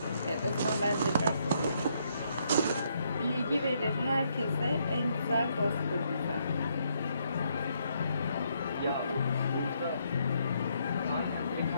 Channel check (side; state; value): both; inverted; correlation -0.73